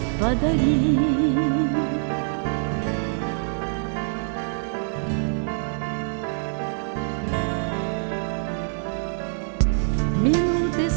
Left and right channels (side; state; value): left; silent; digital silence